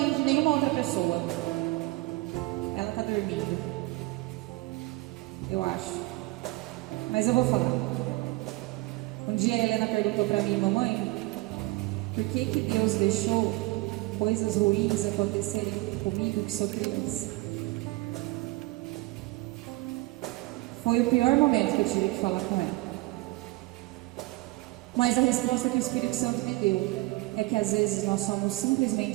de nenhuma outra pessoa. Ela está dormindo, eu acho. Mas eu vou falar. Um dia a Helena perguntou para mim: mamãe, por que Deus deixou coisas ruins acontecerem comigo que sou criança? Foi o pior momento que eu tive que falar com ela. Mas a resposta que o Espírito Santo me deu é que às vezes nós somos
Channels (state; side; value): quieter; left; 21.2 dB